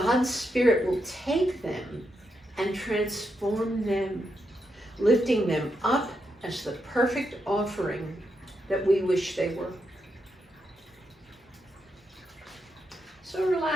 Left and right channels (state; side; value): normal; both; correlation 0.83